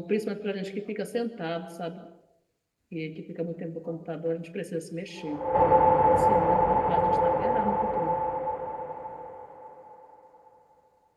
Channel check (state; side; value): identical; both; correlation 1.00